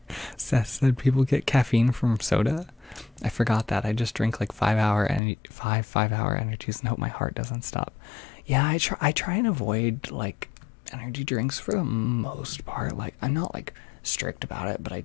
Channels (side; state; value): right; drops out; at 5.2 s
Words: said people get caffeine from soda. I forgot that. I just drink like 5 hour energies and hope my heart doesn't stop. Yeah, I try and avoid like energy drinks for the most part. Like, I'm not like strict about it, but I